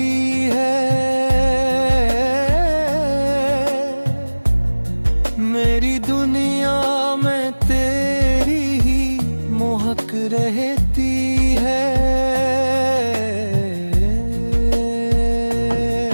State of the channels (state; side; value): inverted; both; correlation -1.00